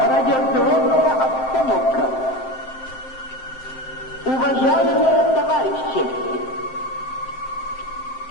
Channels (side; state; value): right; late; 7.6 ms